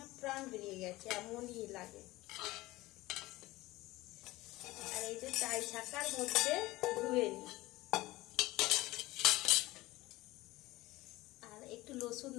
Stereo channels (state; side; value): quieter; right; 19.0 dB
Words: প্রাণ বেরিয়ে গেছে, এমনই লাগে। আর এই যে চাই ছাকার মধ্যে ধুয়ে নি, আর একটু রসুন